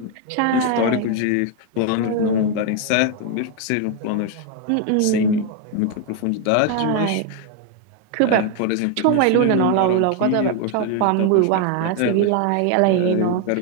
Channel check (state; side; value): different; both; correlation 0.01